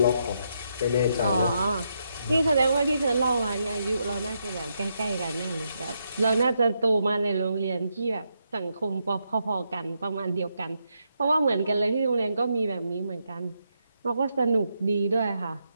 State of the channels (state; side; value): inverted; both; correlation -0.80